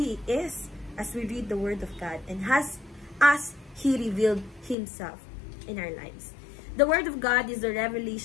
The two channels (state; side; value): drops out; right; at 4.8 s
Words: is as we read the Word of God and as He revealed Himself in our lives. The Word of God is the